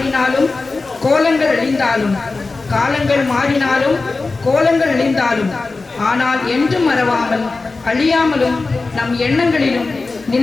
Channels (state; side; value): quieter; right; 3.7 dB